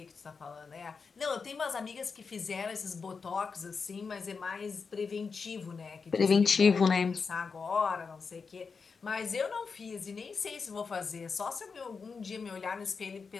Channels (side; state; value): right; quieter; 5.2 dB